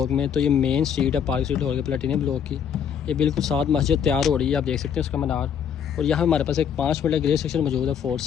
में। तो ये मेन स्ट्रीट है पार्क स्ट्रीट लाहौर के प्लेटिनियम ब्लॉक की। ये बिल्कुल साथ मस्जिद तैयार हो रही है, आप देख सकते हैं उसका मीनार। और यहाँ हमारे पास एक 5 मिनट ग्रे सेक्शन मौजूद है फॉर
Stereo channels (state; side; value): quieter; right; 8.0 dB